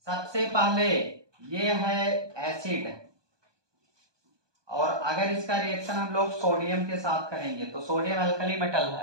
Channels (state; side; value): late; left; 1.2 ms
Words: सबसे पहले ये है एसिड, और अगर इसका रिएक्शन हम लोग सोडियम के साथ करेंगे तो सोडियम अल्कली मेटल